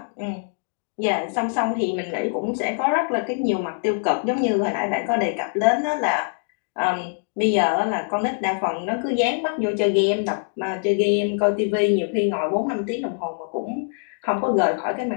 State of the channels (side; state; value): right; silent; digital silence